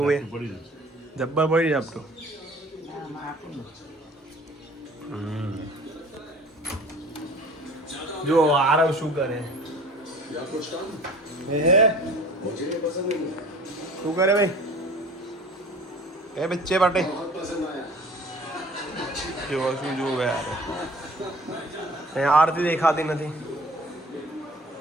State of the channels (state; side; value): normal; both; correlation 0.47